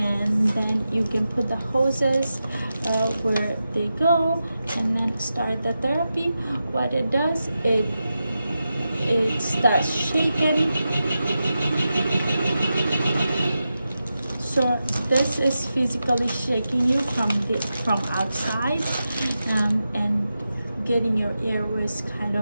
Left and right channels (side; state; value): both; inverted; correlation -0.91